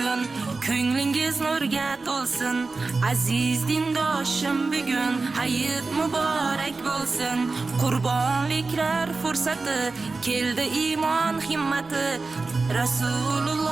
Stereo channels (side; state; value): left; quieter; 3.8 dB